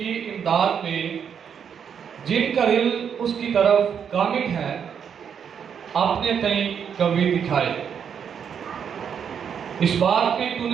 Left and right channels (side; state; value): left; quieter; 7.6 dB